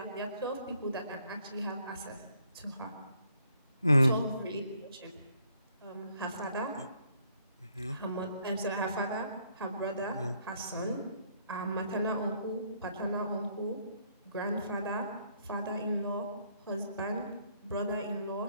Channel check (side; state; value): both; inverted; correlation -0.68